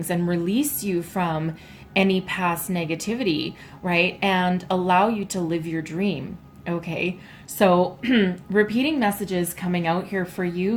and release you from any past negativity, right? And allow you to live your dream. Okay, so repeating messages coming out here for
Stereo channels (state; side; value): identical; both; correlation 1.00